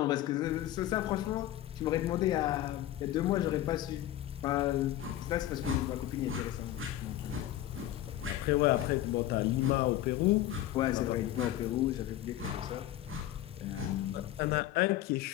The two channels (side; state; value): right; quieter; 13.5 dB